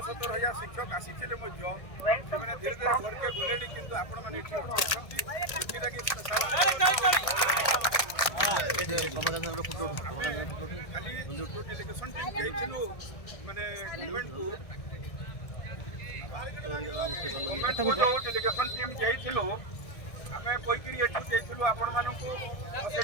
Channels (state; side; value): late; right; 1.6 ms